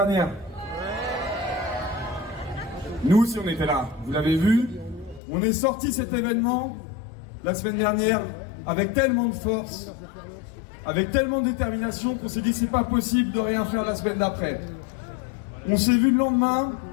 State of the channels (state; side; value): drops out; right; at 5.2 s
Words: Nous aussi on était là, vous l'avez vu. On est sorti cet événement la semaine dernière avec tellement de force, avec tellement de détermination qu'on s'est dit c'est pas possible de rien faire la semaine d'après. On s'est vu le lendemain